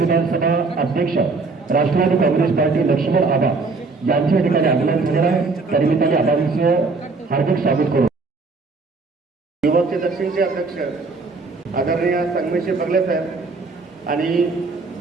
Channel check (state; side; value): quieter; left; 4.0 dB